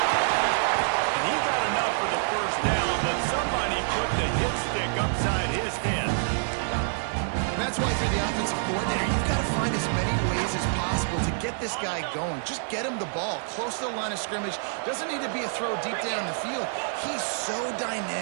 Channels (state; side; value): silent; left; 60 dB below the other